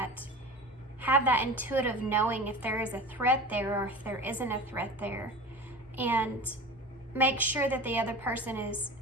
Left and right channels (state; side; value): normal; both; correlation 0.33